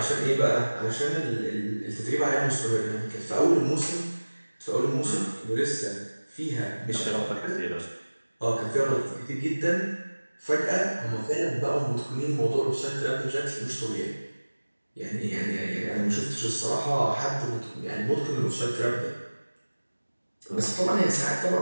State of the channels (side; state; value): both; inverted; correlation -1.00